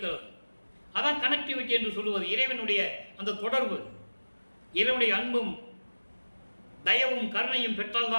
அதான் கனெக்டிவிட்டி என்று சொல்லுவது. இறைவனுடைய அந்த தொடர்பு, இறைவனுடைய அன்பும் தயவும் கருணையும்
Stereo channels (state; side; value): inverted; both; correlation -1.00